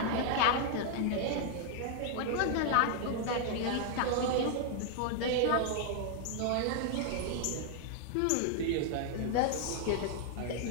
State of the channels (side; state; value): both; different; correlation 0.00